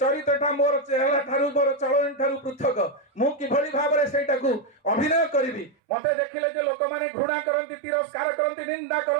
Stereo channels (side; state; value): left; drops out; at 5.8 s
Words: मोर चेहरा ठारू मोर चलन ठारू पृथक मु किभଳି भाबरे सेटाकू अभिनय करिवि मते देखिले जे लोक माने घृणा करंती तिरस्कार करंती निंदा